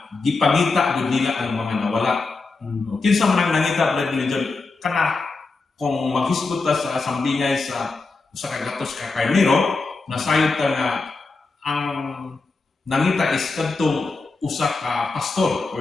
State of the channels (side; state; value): right; quieter; 3.9 dB